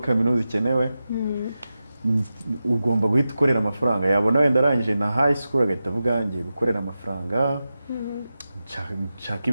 ikenewe ugomba guhita ukorera amafaranga yabona wenda arangije na high school agahita avuga ngiye gukorera amafaranga nshaka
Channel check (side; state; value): both; inverted; correlation -0.92